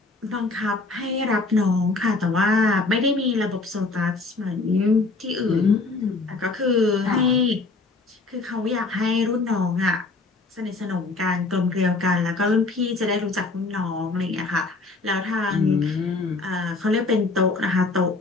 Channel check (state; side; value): quieter; right; 3.6 dB